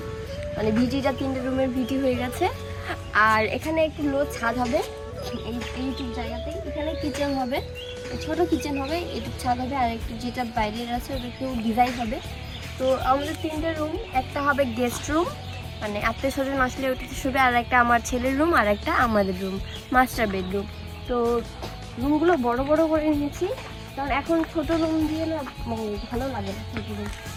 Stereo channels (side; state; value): both; identical; correlation 1.00